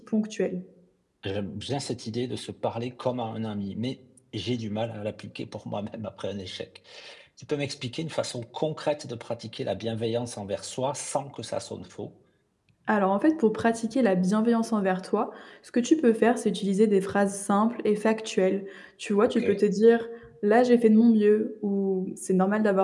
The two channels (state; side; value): identical; both; correlation 1.00